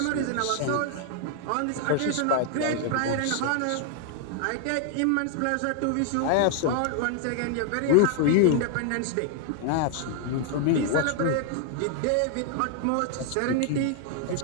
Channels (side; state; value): both; different; correlation 0.00